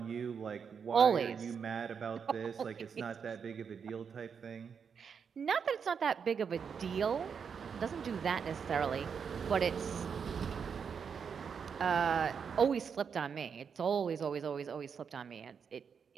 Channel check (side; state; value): left; quieter; 6.6 dB